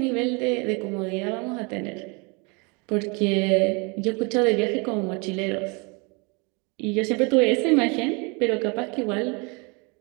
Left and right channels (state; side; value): quieter; left; 30.7 dB